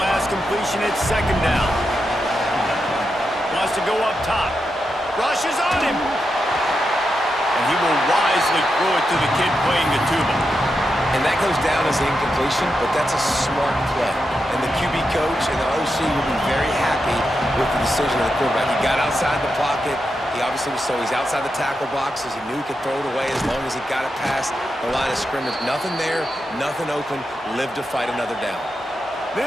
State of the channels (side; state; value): both; normal; correlation 0.87